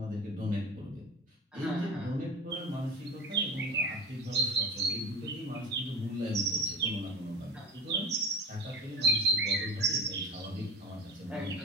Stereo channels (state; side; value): normal; both; correlation 0.32